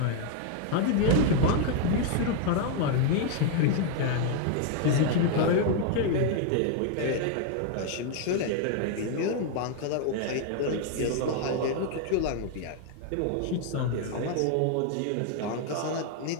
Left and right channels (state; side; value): different; both; correlation 0.00